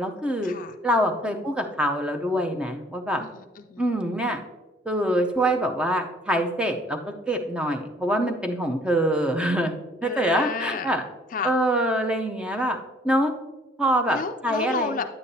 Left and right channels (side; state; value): both; normal; correlation 0.58